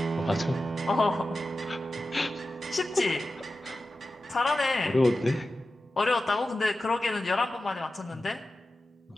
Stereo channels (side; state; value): both; normal; correlation 0.93